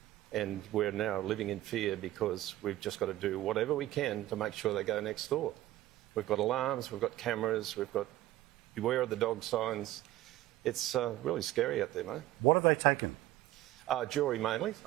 And we're now living in fear because we've just got to do whatever we can to make sure they go next door. We've got alarms, we've got cameras, we've got beware of the dog signs. It's really scary out there, mate. What have they taken? Jewellery mainly,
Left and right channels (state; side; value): quieter; left; 15.4 dB